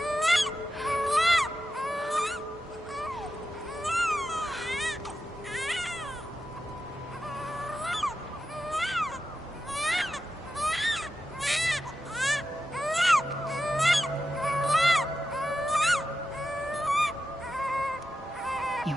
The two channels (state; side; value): normal; both; correlation 0.90